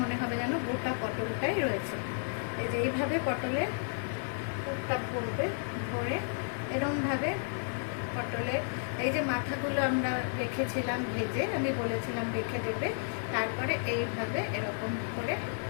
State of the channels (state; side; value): silent; right; digital silence